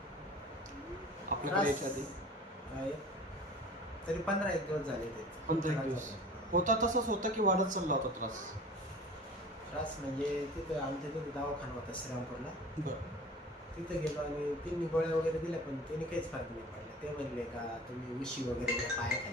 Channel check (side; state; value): both; normal; correlation 0.41